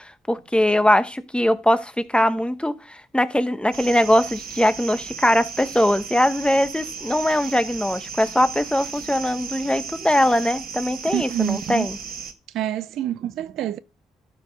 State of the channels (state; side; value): normal; both; correlation 0.91